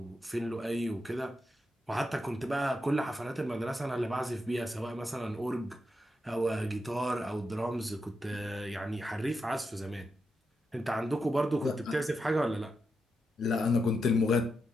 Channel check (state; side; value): normal; both; correlation 0.86